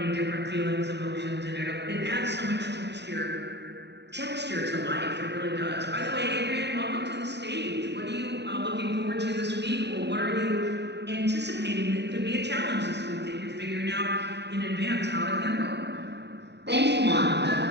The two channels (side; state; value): left; late; 0.50 ms